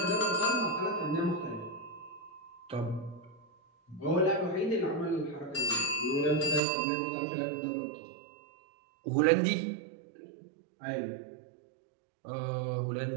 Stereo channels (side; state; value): left; drops out; at 6.6 s